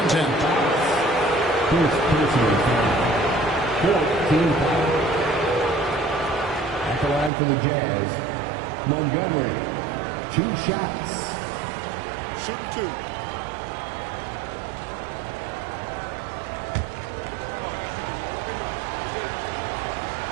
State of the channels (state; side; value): drops out; left; at 7.3 s